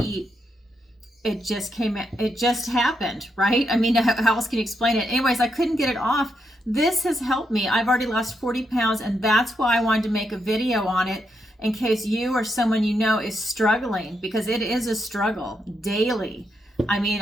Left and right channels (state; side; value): normal; both; correlation 0.81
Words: eat. It just happened, right? I mean, how else can you explain it? Anyways, I couldn't get it off. This has helped me. I've already lost 40 pounds, and that's why I wanted to make a video on it in case you or someone you know is struggling, because it is a struggle daily. I